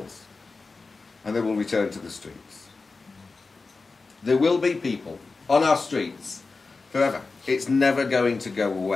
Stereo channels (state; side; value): quieter; right; 4.0 dB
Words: And they will return to the streets. There will be people on our streets forever. It's never going to go